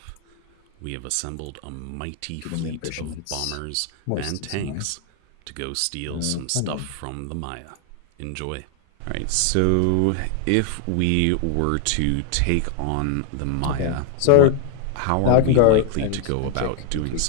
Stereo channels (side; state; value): both; different; correlation 0.00